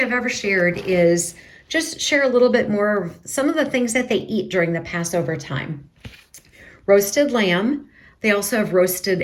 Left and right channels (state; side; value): identical; both; correlation 1.00